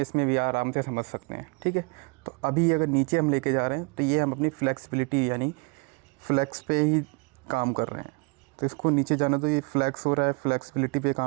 इसमें भी आराम से समझ सकते हैं, ठीक है। तो अभी अगर नीचे हम लेके जा रहे हैं तो ये हम अपनी फ्लेक्सिबिलिटी यानी फ्लेक्स पे ही काम कर रहे हैं। तो इसको नीचे जाना, तो ये फ्लेक्स हो रहा है, फ्लेक्सिबिलिटी पे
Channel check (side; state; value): left; quieter; 31.6 dB